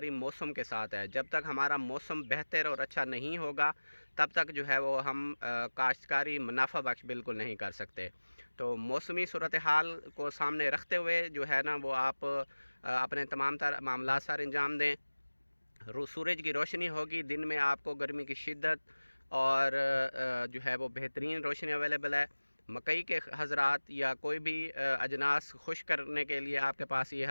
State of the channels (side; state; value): both; inverted; correlation -1.00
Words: मौसम के साथ है। जब तक हमारा मौसम बेहतर और अच्छा नहीं होगा तब तक जो है वो हम काश्तकारी मुनाफा बख्श बिल्कुल नहीं कर सकते। तो मौसमी सूरत हाल को सामने रखते हुए जो है ना वो आप अपने तमाम तर मामला सर अंजाम दें। सूरज की रोशनी होगी, दिन में आपको गर्मी की शिद्दत और जो है वो बेहतरीन रोशनी अवेलेबल है। मकई के हज़रात या कोई भी अजनास खुश करने के लिए आपके पास ये